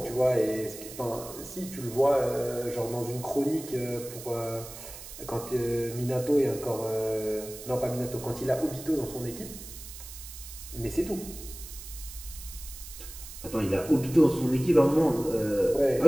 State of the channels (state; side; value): noise; right; hiss, 13 dB below the sound